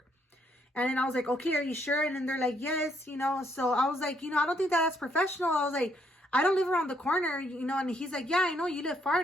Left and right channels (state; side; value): normal; both; correlation 0.72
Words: And then I was like, okay, are you sure? And then they're like, yes, you know. So I was like, you know, I don't think that's professional. I was like, I don't live around the corner, you know. And he's like, yeah, I know you live far.